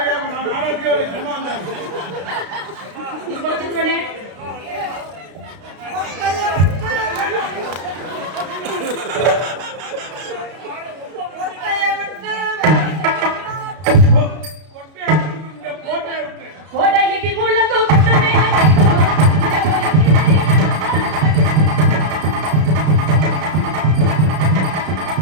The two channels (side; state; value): left; late; 32 ms